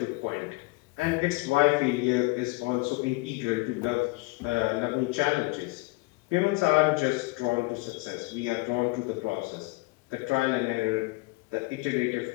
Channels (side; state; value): right; quieter; 23.9 dB